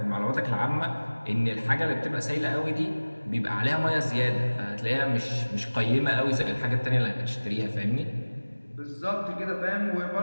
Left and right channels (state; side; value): inverted; both; correlation -1.00